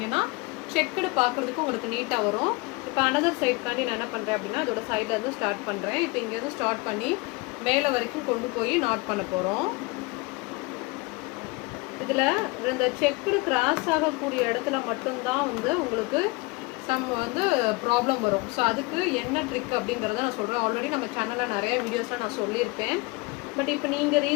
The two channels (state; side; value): quieter; right; 25.6 dB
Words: செக்குடு பார்க்குறதுக்கு உங்களுக்கு நீட்டாக வரும். இப்போ அனதர் சைடுக்காண்டி நான் என்ன பண்ணுறேன் அப்படின்னா அதோட சைடில் இருந்து ஸ்டார்ட் பண்ணுறேன். இப்போ இங்கேருந்து ஸ்டார்ட் பண்ணி மேலே வரைக்கும் கொண்டு போய் நாட் பண்ண போகிறோம். இதில் இந்த செக்குடு கிராஸ் ஆகக்கூடிய இடத்துல மட்டும்தான் வந்து உங்களுக்கு வந்து ப்ராப்ளம் வரும். ஸோ அதுக்கு என்ன ட்ரிக் அப்படிங்கிறத நான் சொல்கிறேன். ஆல்ரெடி நம்ம சேனலில் நிறைய வீடியோஸ்லாம் நான் சொல்லியிருப்பேன். பட் இப்போ நீங்கள்